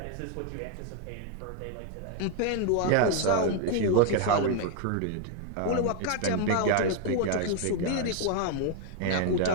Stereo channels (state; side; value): different; both; correlation 0.00